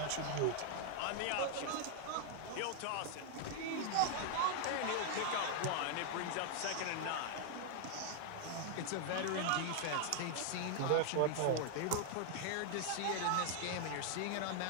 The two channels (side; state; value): both; different; correlation 0.00